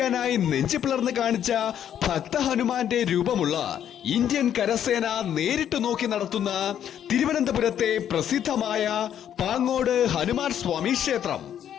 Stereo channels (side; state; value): right; quieter; 9.8 dB